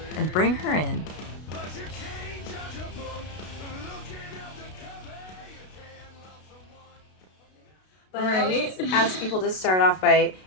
and bring her in. But I always ask people to start off by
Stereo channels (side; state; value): right; late; 32 ms